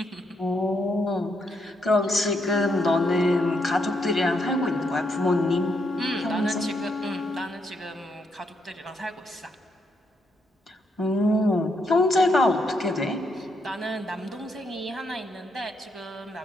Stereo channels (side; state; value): both; normal; correlation 0.77